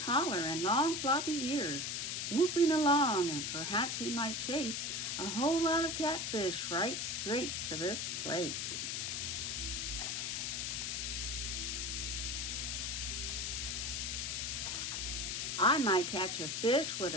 and long floppy ears, woofing along, and perhaps he might chase a whole lot of catfish right straight to this place." "I might catch a fish with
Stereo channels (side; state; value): left; noise; hiss, 1 dB below the sound